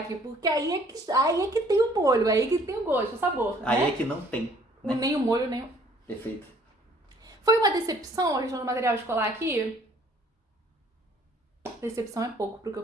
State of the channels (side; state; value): both; normal; correlation 0.58